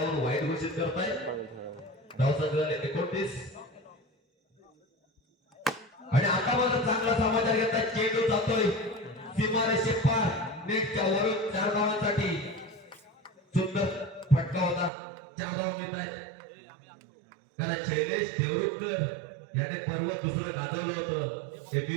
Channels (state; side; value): drops out; left; at 14.9 s